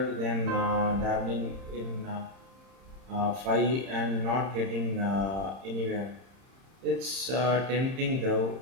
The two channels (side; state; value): left; late; 31 ms